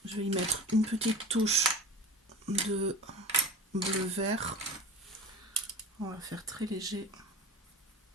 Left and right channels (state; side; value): normal; both; correlation 0.35